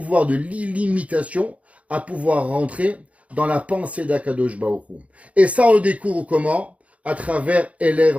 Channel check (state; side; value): late; left; 0.066 ms